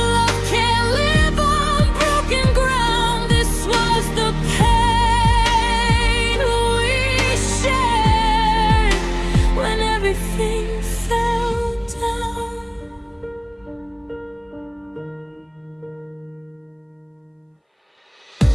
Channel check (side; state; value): both; identical; correlation 1.00